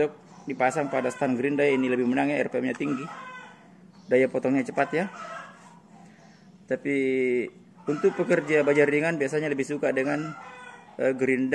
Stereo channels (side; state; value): both; identical; correlation 1.00